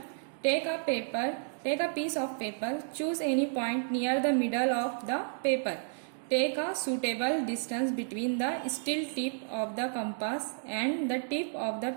Take a piece of paper, choose any point near the middle of the paper, take a suitable distance between the steel tip of the compass and the tip of the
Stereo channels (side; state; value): left; silent; digital silence